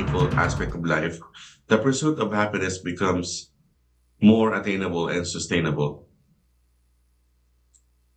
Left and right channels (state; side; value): identical; both; correlation 1.00